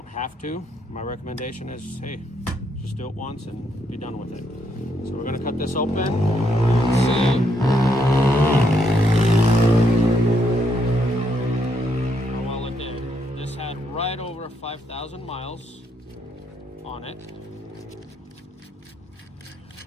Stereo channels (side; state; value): both; normal; correlation 0.75